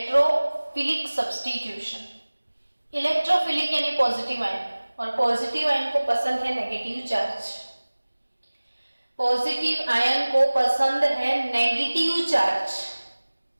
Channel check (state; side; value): inverted; both; correlation -1.00